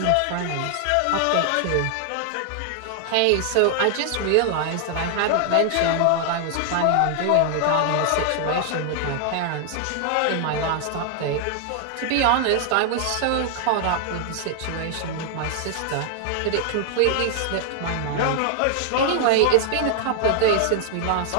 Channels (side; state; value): both; different; correlation 0.00